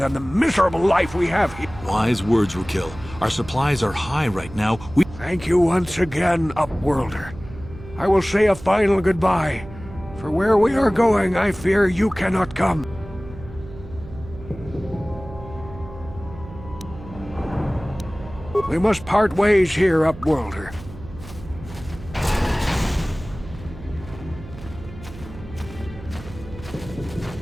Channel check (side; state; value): right; noise; hum, 15 dB below the sound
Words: the miserable life we have here. Wise words, Frukill. Our supplies are high right now. Thank you once again, Upworlder. I will say a final goodbye. For where we are going, I fear you cannot come. We must part ways here, Upworlder.